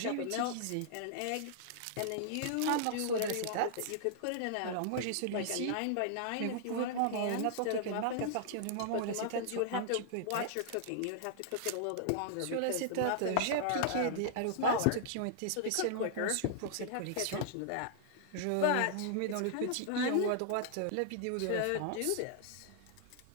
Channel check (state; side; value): different; both; correlation -0.01